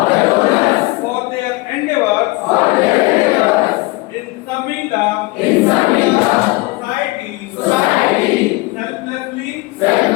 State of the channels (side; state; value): right; quieter; 23.3 dB